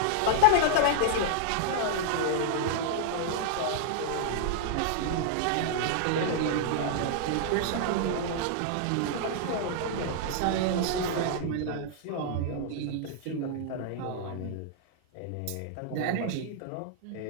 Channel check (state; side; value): different; both; correlation -0.01